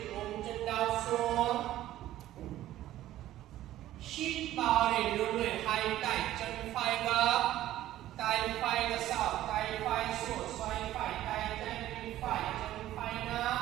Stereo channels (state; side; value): quieter; left; 13.9 dB